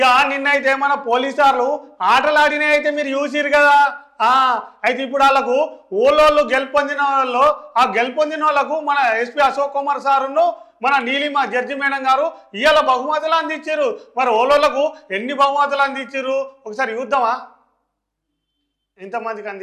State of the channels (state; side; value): identical; both; correlation 1.00